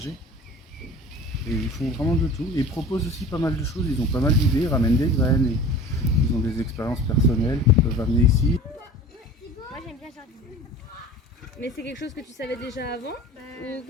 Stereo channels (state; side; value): normal; both; correlation 0.41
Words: Et ils font vraiment de tout. Et ils proposent aussi pas mal de choses, ils ont pas mal d'idées, ils ramènent des graines, et ils ont des expériences personnelles qu'ils peuvent amener ici. Moi j'aime bien jardiner. Mais c'est quelque chose que tu savais déjà avant ou